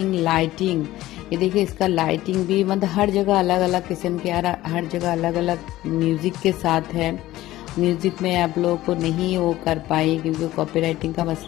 लाइटिंग, ये देखिए इसका लाइटिंग भी मतलब हर जगह अलग अलग किस्म के, हर जगह अलग अलग म्यूज़िक के साथ है। म्यूज़िक में आप लोगों को नहीं वो कर पाई क्योंकि कॉपीराइटिंग का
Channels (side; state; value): right; quieter; 15.9 dB